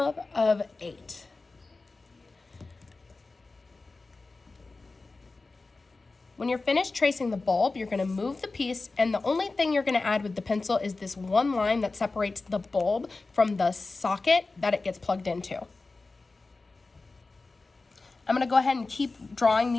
of 8. When you're finished tracing the bulb, you're going to move the piece, and the only thing you're going to add with the pencil is this one line that separates the bulb from the socket that it gets plugged into. I'm going to go ahead and keep drawing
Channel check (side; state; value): right; quieter; 3.6 dB